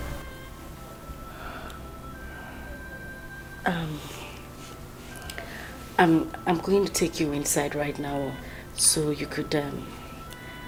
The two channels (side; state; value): both; identical; correlation 1.00